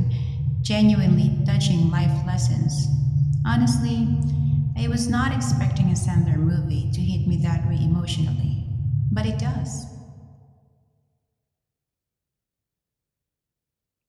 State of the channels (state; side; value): identical; both; correlation 1.00